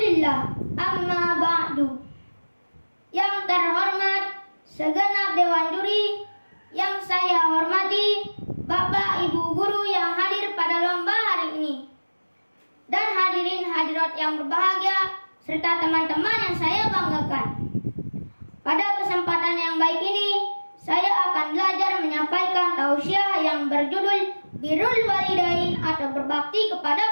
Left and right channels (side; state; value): both; inverted; correlation -1.00